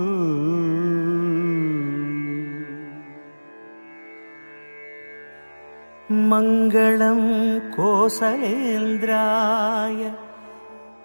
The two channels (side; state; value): both; inverted; correlation -1.00